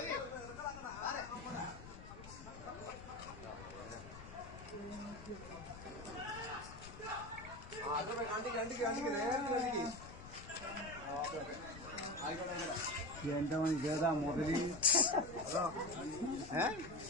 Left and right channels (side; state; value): left; noise; rumble, 14 dB below the sound